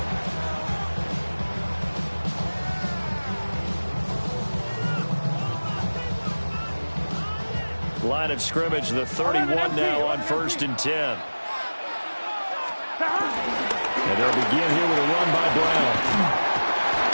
line. Line of scrimmage, the 31 now on 1st and 10. And they'll begin here with a run by Brown.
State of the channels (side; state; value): both; inverted; correlation -1.00